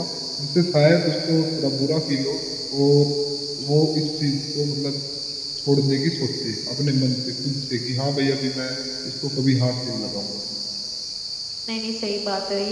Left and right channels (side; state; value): both; identical; correlation 1.00